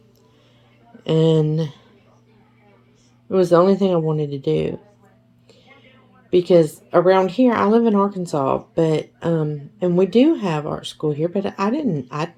And it was the only thing I wanted to do. Because around here, I live in Arkansas, but and we do have art school here, but I'd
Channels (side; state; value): both; identical; correlation 1.00